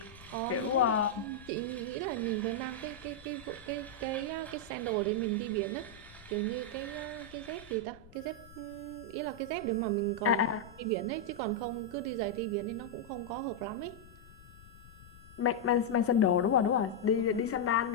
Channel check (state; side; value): noise; left; rumble, 21 dB below the sound